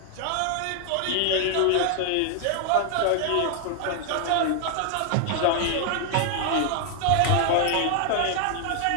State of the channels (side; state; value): both; different; correlation 0.00